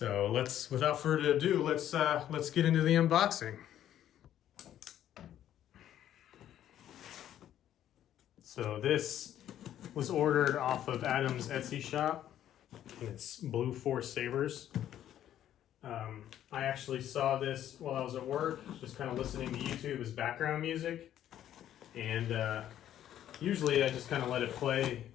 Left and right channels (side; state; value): right; quieter; 11.3 dB